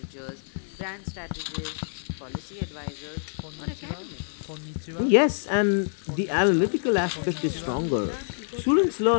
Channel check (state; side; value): silent; right; digital silence